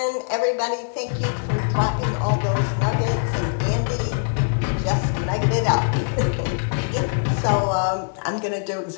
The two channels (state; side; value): silent; right; digital silence